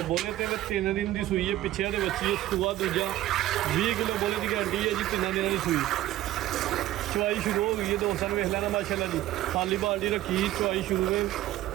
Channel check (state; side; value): quieter; left; 14.7 dB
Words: ਬੋਲੇ ਤੇ 3 ਦਿਨ ਦੀ ਸੂਈ ਹੈ, ਪਿੱਛੇ ਦੇ ਬੱਚੀ ਸੂਆ ਦੂਜਾ 20 ਕਿਲੋ ਬੋਲੇ ਦੀ ਗਾਰੰਟੀ ਹੈ ਜੀ। 3 ਦਿਨਾਂ ਦੀ ਸੂਈ ਚਵਾਈ ਸ਼ੁਰੂ ਹੋ ਗਈ ਹੈ। ਦੋਸਤਾਂ ਨੂੰ ਵੇਖ ਲੈਣਾ ਮਾਸ਼ਾਅੱਲਾ ਜੀ। ਖਾਲੀ ਬਾਲਟੀ ਰੱਖੀ, ਚਵਾਈ ਸ਼ੁਰੂ ਹੈ।